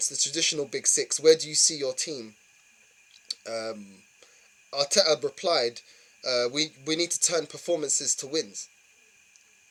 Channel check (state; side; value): identical; both; correlation 1.00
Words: the traditional Big Six. Where do you see your team? Arteta replied, "We need to turn performances to wins."